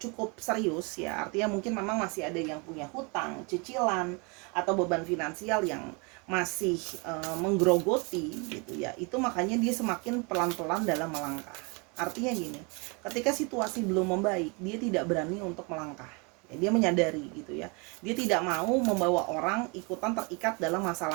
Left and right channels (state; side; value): quieter; left; 31.4 dB